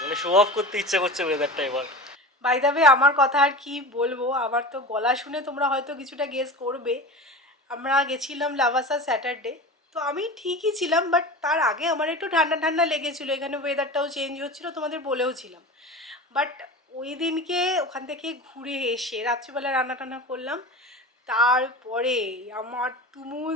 মানে শো অফ করতে ইচ্ছা করছে ওয়েদারটা এবার। বাই দ্য ওয়ে আমার কথা আর কি বলবো, আমার তো গলা শুনে তোমরা হয়তো কিছুটা গেস করবে। আমরা গেছিলাম লাভাসা স্যাটারডে, তো আমি ঠিকই ছিলাম, বাট তার আগে আমার একটু ঠান্ডা ঠান্ডা লেগেছিলো, এখানে ওয়েদারটাও চেঞ্জ হচ্ছিলো, তোমাদের বলেও ছিলাম। বাট ওই দিনকে ওখান থেকে ঘুরে এসে রাত্রিবেলা রান্না টান্না করলাম, তারপরে আমার তুমুল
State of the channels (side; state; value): both; normal; correlation 0.31